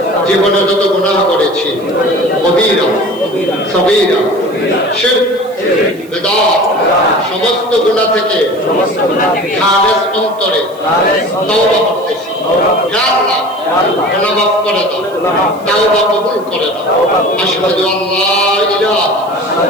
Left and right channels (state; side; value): noise; right; hiss, 25 dB below the sound